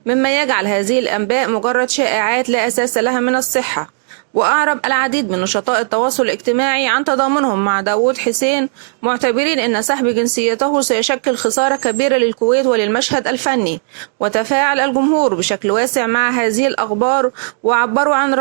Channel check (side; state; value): left; silent; digital silence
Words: مما يجعل هذه الأنباء مجرد شائعات لا أساس لها من الصحة. وأعرب العديد من نشطاء التواصل الاجتماعي عن تضامنهم مع داوود حسين، معتبرين أن سحب جنسيته سيشكل خسارة كبيرة للكويت وللمشهد الفني. وتفاعل الجمهور بشكل واسع مع هذه الأخبار، وعبروا عن